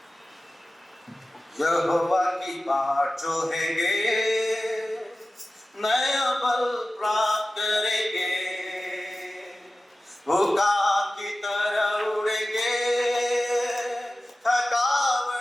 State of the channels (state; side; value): normal; both; correlation 0.95